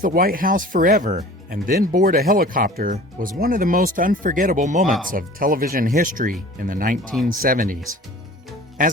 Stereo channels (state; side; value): normal; both; correlation 0.44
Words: the White House forever and then board a helicopter was one of the most unforgettable moments of television history in the 1970s.